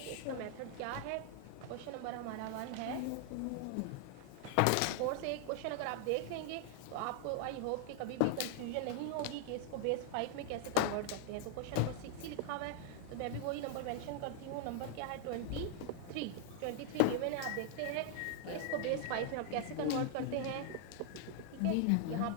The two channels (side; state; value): both; different; correlation 0.00